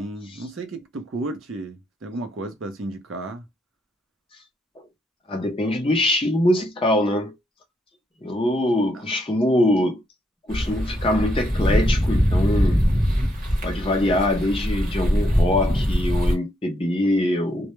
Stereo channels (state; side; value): normal; both; correlation 0.77